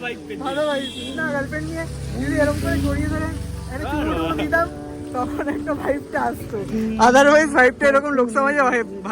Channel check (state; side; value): identical; both; correlation 1.00